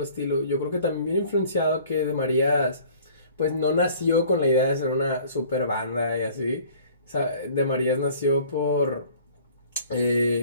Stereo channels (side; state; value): both; inverted; correlation -0.51